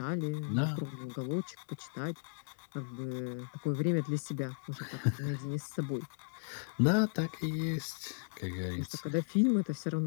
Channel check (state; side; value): silent; right; 54 dB below the other